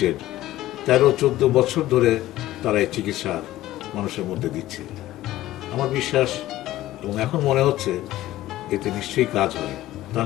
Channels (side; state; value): right; quieter; 15.4 dB